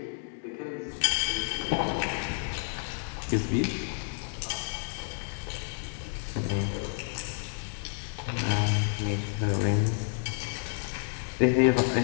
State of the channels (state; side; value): silent; right; digital silence